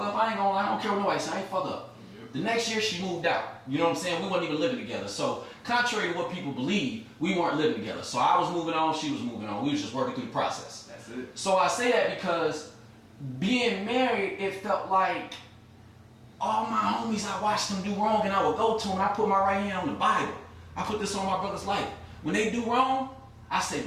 care what nobody say, I ain't fuck up. The next year, she moved out. You know what I'm saying? We weren't even living together. So, contrary to what people believe, we weren't living together. So, I was moving on, she was moving on. We was just working through the process. That's it. So, I say that because being married, it felt like all my homies, I watched them do wrong, and I would go to them, and I put my right hand on the Bible. I put this on my brother's life. When they do wrong, I say,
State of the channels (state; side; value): identical; both; correlation 1.00